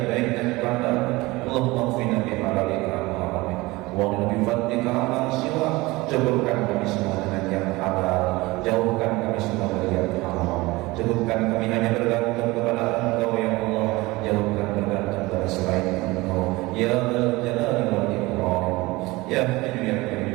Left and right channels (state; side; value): quieter; left; 21.5 dB